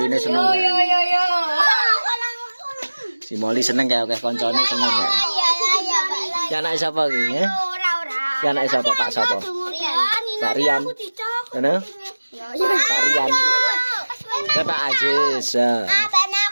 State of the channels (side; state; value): both; inverted; correlation -1.00